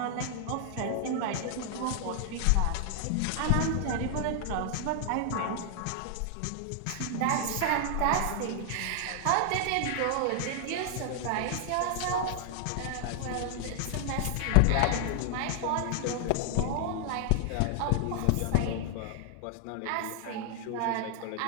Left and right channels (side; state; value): both; different; correlation 0.00